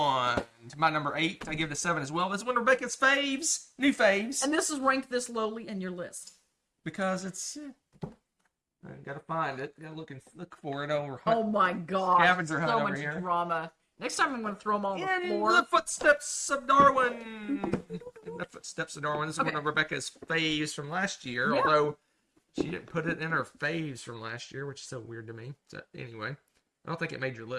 to my number 8. I give it a 7 as well. This is one of Rebecca's faves, new faves, And this is ranked this lowly in your list. because it's. I gotta find it. Gotta look for it over. Oh my gosh. Scavenger hunt so over much here. drama. Next time I'm going to throw them all on the In floor. the footsteps of Darwin. In the footsteps of Darwin. This is Okay. one of Rebecca's faves from last year, Yeah. although she didn't put it in her faves from last year, which is so weird to me. So anyway, I don't think it made your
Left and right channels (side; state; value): both; identical; correlation 1.00